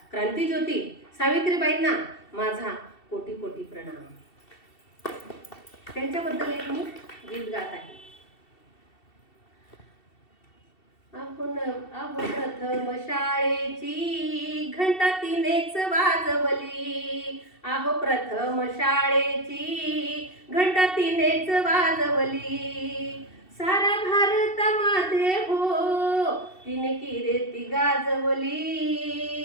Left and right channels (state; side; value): late; right; 2.7 ms